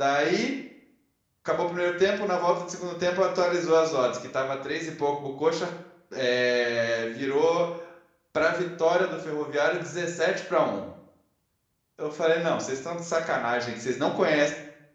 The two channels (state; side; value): identical; both; correlation 1.00